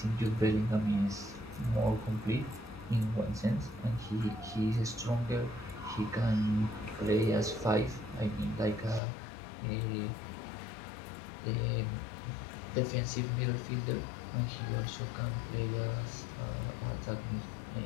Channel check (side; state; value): right; drops out; at 9.0 s